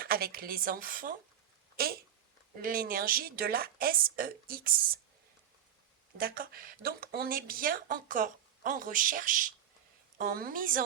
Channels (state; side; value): quieter; left; 9.6 dB